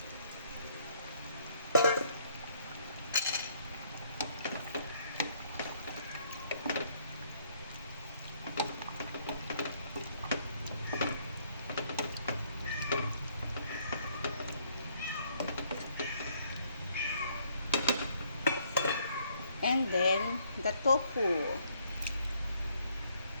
And then, the tofu.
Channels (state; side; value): inverted; both; correlation -0.67